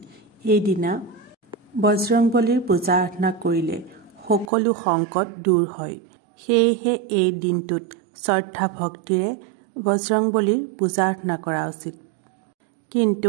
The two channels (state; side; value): drops out; left; at 4.5 s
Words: এই দিনা বজৰংবলীৰ পূজা আৰাধনা কৰিলে সকলো সংকট দূৰ হয়। সেয়েহে এই দিনটোত শ্ৰদ্ধা ভক্তিৰে বজৰংবলীৰ পূজা আৰাধনা কৰা উচিত।